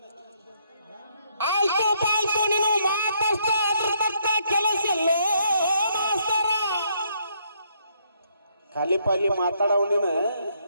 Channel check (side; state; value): both; inverted; correlation -0.71